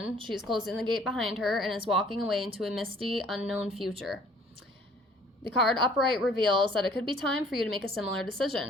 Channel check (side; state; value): both; normal; correlation 0.56